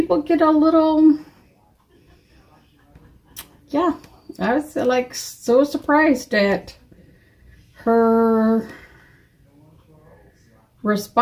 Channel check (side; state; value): both; identical; correlation 1.00